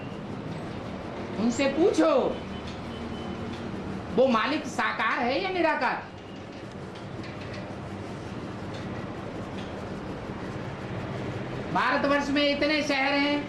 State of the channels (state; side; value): identical; both; correlation 1.00